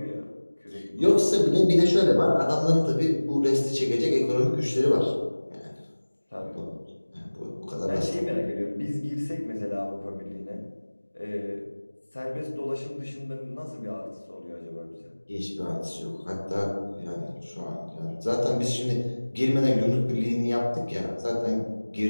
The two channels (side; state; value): both; inverted; correlation -1.00